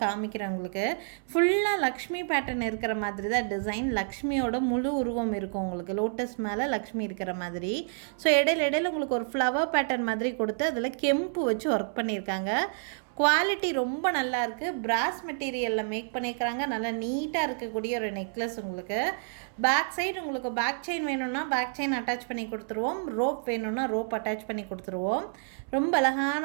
காமிக்கிறேன் உங்களுக்கு. ஃபுல்லாக லக்ஷ்மி பேட்டர்ன் இருக்கிற மாதிரி தான் டிசைன். லக்ஷ்மியோட முழு உருவம் இருக்கும் உங்களுக்கு, லோட்டஸ் மேலே லக்ஷ்மி இருக்கிற மாதிரி. ஸோ இடையில உங்களுக்கு ஒரு ஃப்ளவர் பேட்டர்ன் மாதிரி கொடுத்து அதில் கெம்பு வச்சு ஒர்க் பண்ணியிருக்காங்க. குவாலிட்டி ரொம்ப நல்லா இருக்குது. பிராஸ் மெட்டீரியலில் மேக் பண்ணியிருக்கிறாங்க. நல்லா நீட்டாக இருக்கக்கூடிய ஒரு நெக்லஸ். உங்களுக்கு பேக் சைடு உங்களுக்கு பேக் செயின் வேணும்னா பேக் செயின் அட்டாச் பண்ணி கொடுத்துருவோம். ரோப் வேணும்னா ரோப் அட்டாச் பண்ணி கொடுத்துருவோம். ரொம்ப அழகான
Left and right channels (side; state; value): left; silent; 58 dB below the other